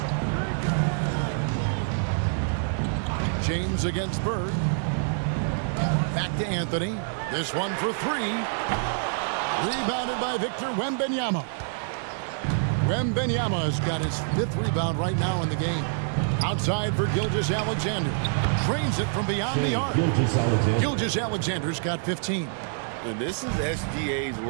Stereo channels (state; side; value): silent; left; digital silence